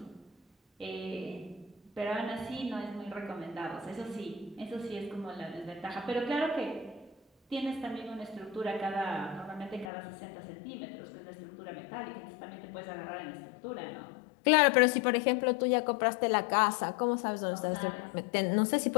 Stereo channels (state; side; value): drops out; right; at 9.9 s